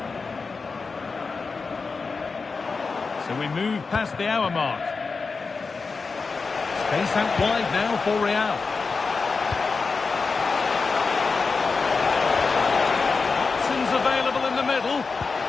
So we move past the hour mark. Space out wide now for Real. Options available in the middle.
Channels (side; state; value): right; quieter; 4.5 dB